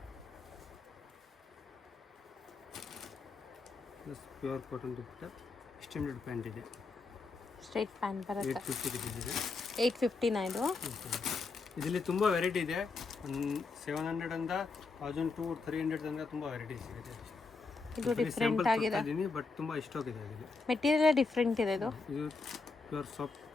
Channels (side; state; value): right; quieter; 4.0 dB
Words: ಪ್ಲಸ್ ಪ್ಯೂರ್ ಕಾಟನ್ ದುಪ್ಪಟ್ಟ ಎಕ್ಸ್ಟೆಂಡೆಡ್ ಪ್ಯಾಂಟ್ ಇದೆ. ಸ್ಟ್ರೈಟ್ ಪ್ಯಾಂಟ್ ಬರುತ್ತೆ. 850 ರುಪೀಸ್ ಇದೆ. 850 ಇದು. ಇದರಲ್ಲಿ ತುಂಬ ವೆರೈಟಿ ಇದೆ. 700 ಇಂದ 1200 300 ತನಕ ತುಂಬ ವೆರೈಟೀಸ್ ಇದೆ. ಇದು ಡಿಫ್ರೆಂಟ್ ಆಗಿದೆ. ಬಟ್ ತುಂಬ ಸ್ಟಾಕ್ ಇದೆ. ಅದರಲ್ಲಿ ಮೆಟೀರಿಯಲ್ ಡಿಫ್ರೆಂಟ್ ಇದೆ. ಇದು ಪ್ಯೂರ್ ಸಾಫ್ಟ್